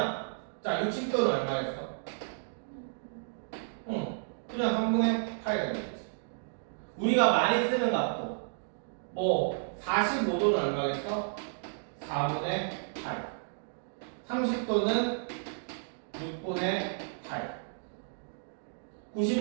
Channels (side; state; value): left; silent; digital silence